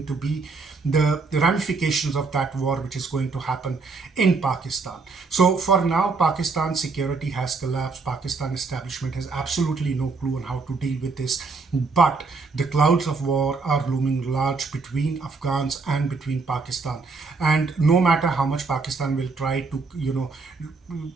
to be the ramifications of that war which is going to happen in Pakistan? So for now, Pakistan's security has collapsed. Pakistan establishment has absolutely no clue on how to deal with this. But the clouds of war are looming large between Afghans and between Pakistan. And no matter how much Pakistan will try to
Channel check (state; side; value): quieter; left; 4.3 dB